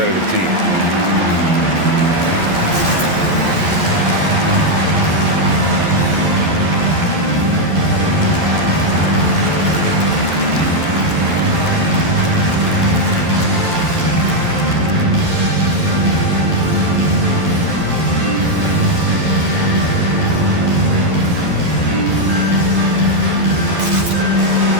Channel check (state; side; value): late; left; 11 ms